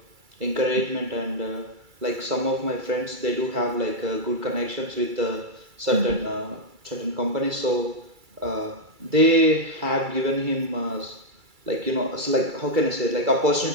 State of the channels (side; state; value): left; late; 2.3 ms